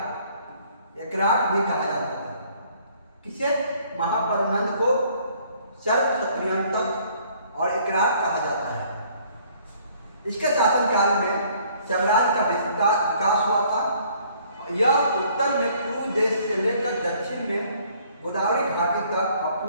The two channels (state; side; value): inverted; both; correlation -0.60